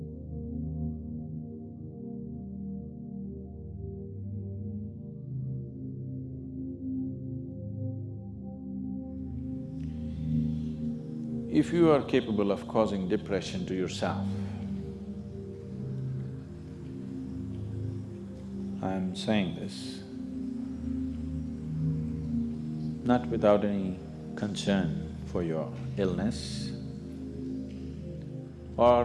If you are capable of causing depression to yourself, I'm saying this not without any concern for your illness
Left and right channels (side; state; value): both; identical; correlation 1.00